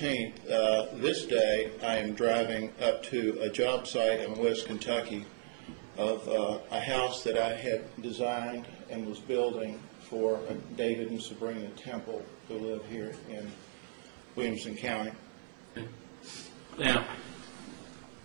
this day, I am driving up to a job site in West Kentucky of a house that I had designed and was building for David and Sabrina Temple, who live here in Williamson County. Okay. Now,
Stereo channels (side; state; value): left; silent; 54 dB below the other